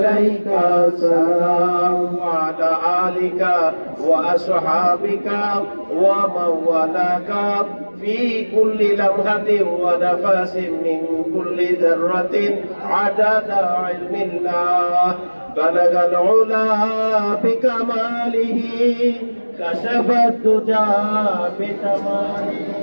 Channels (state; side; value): inverted; both; correlation -1.00